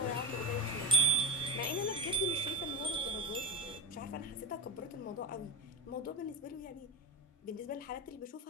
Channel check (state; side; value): normal; both; correlation 0.14